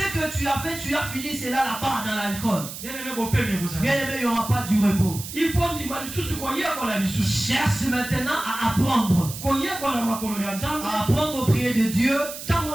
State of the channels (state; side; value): noise; right; hiss, 10 dB below the sound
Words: que tu as fait, tu as fini cela là-bas dans l'alcool. Bien aimé, il n'y aura pas du repos. Cherche maintenant à apprendre. À apprendre au prier de Dieu. Et